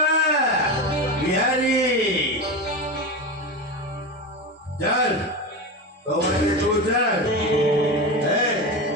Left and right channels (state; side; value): normal; both; correlation 0.21